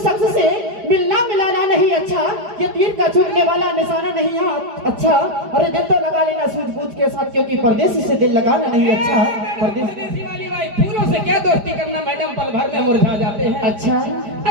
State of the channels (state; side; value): late; left; 4.9 ms